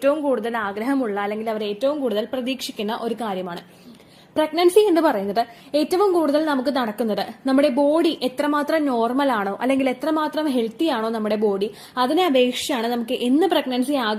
കൂടുതൽ ആഗ്രഹമുള്ള അല്ലെങ്കിൽ അവർ ഏറ്റവും കൂടുതൽ പ്രതീക്ഷിക്കുന്ന ഒരു കാര്യമാണ്. പ്രഗ്നൻസി എന്ന് പറയുന്നത് ഏറ്റവും കൂടുതൽ നമുക്ക് നടക്കുന്നത് നമ്മുടെ ബോഡി എത്രമാത്രം നോർമൽ ആണോ അല്ലെങ്കിൽ എത്രമാത്രം ഹെൽത്തി ആണോ നമ്മുടെ ബോഡി, അതിനെ അപേക്ഷിച്ചാണ് നമുക്ക് എന്ന് പ്രഗ്നൻസി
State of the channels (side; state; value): both; identical; correlation 1.00